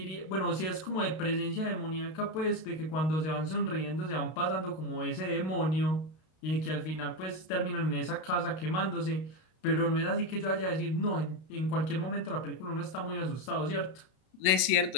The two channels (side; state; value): right; late; 32 ms